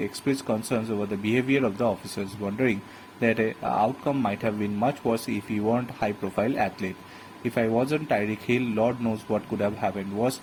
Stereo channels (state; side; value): identical; both; correlation 1.00